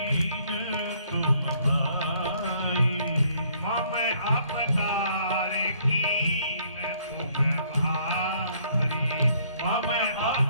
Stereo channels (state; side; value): inverted; both; correlation -0.65